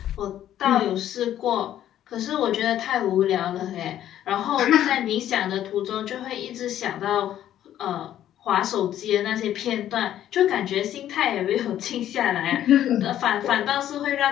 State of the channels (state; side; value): quieter; right; 11.6 dB